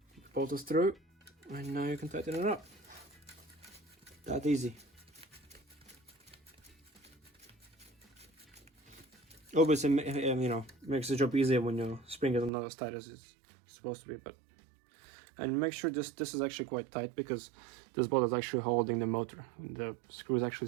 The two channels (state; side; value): drops out; left; at 12.5 s